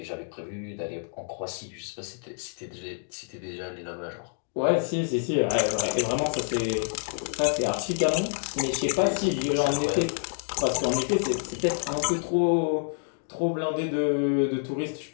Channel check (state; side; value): silent; right; digital silence